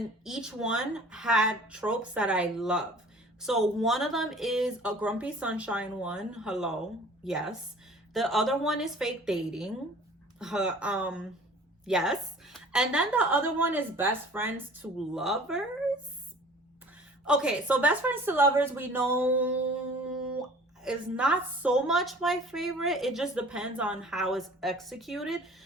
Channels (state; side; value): normal; both; correlation 0.48